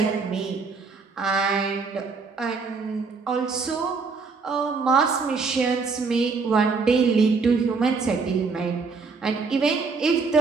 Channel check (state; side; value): quieter; left; 4.6 dB